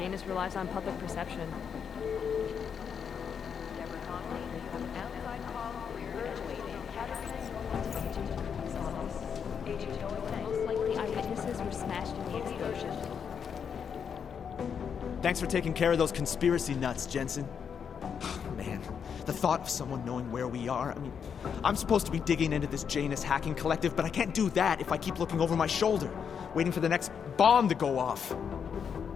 relies on public perception. Most likely eyewitnesses were smashed in the explosion. Thanks for taking care of those conspiracy nuts, Jensen. Man, the thought of someone knowing where we are, I mean, I'm supposed to be digging into this Janus hacking collective, but I can't do that if I keep looking over my shoulder, waiting for the next bomb to go off.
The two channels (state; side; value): quieter; right; 7.1 dB